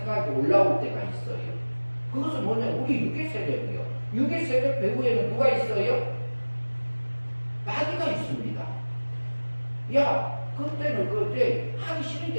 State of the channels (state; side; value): inverted; both; correlation -1.00